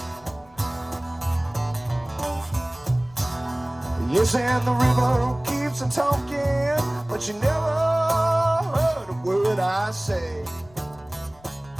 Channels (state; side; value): noise; left; rumble, 26 dB below the sound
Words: Yes, and the river keeps on talking, but you never heard a word I say.